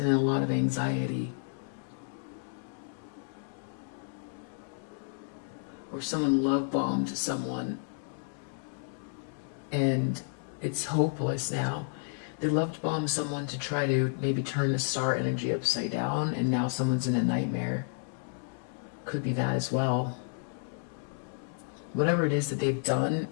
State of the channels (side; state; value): right; silent; digital silence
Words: a lot of anxiety. Or someone love bombed someone and it's hopeless now. They loved bomb someone to try to maybe turn the star energy upside down, and now someone's in a nightmare. Could be that as well. Whatever it is that they've done